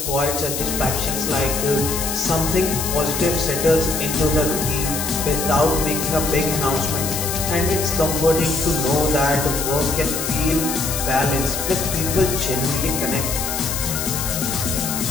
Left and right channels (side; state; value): left; noise; hiss, 3 dB below the sound